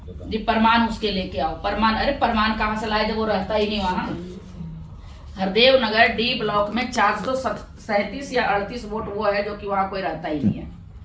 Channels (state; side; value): identical; both; correlation 1.00